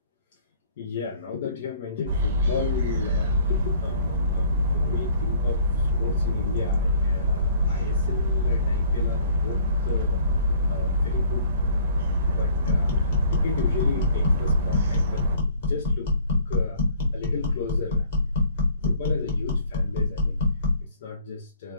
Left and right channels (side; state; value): both; inverted; correlation -0.55